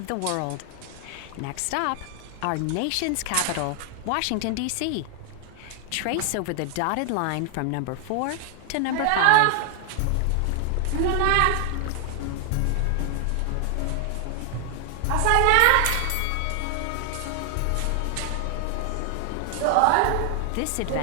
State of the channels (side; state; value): both; different; correlation 0.00